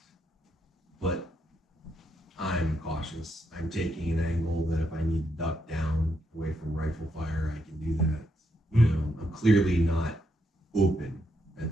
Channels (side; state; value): both; normal; correlation 0.79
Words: but I'm cautious. I'm taking an angle that if I need to duck down away from rifle fire, I can do that. I'm clearly not open